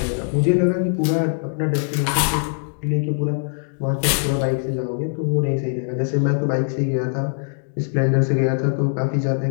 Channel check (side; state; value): right; silent; digital silence